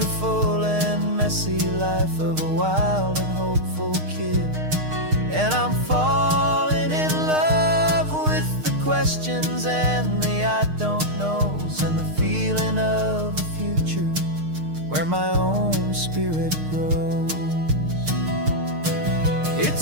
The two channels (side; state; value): left; late; 6.5 ms